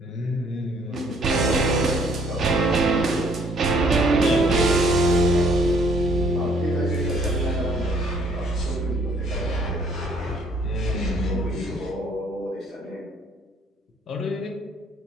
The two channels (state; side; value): normal; both; correlation 0.62